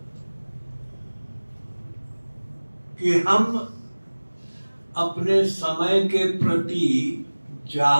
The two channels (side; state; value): both; inverted; correlation -1.00